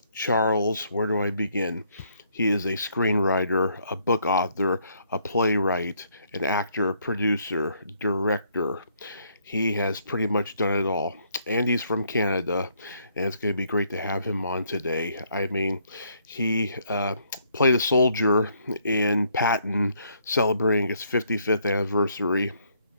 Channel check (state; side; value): inverted; both; correlation -0.70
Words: Charles, where do I begin? He is a screenwriter, a book author, a playwright, an actor, producer, director. He has pretty much done it all. And he's from Canada, and it's going to be great to have him on today. I mean, he played a soldier in Patton celebrating its 55th anniversary,